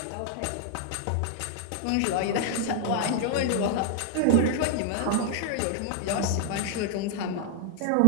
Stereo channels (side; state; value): both; different; correlation 0.00